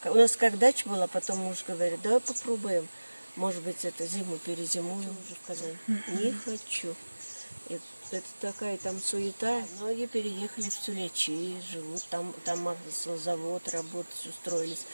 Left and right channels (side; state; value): both; inverted; correlation -1.00